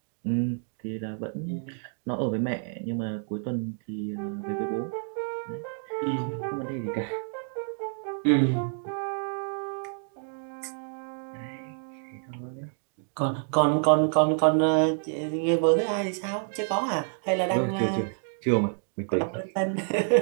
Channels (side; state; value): left; silent; 59 dB below the other